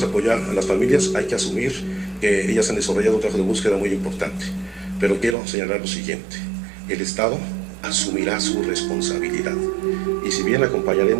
a apoyar a las familias. Hay que asumir que ellas han desarrollado un trabajo de búsqueda muy importante, pero quiero señalar lo siguiente: el Estado asumirá su responsabilidad y si bien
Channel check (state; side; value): drops out; left; at 5.4 s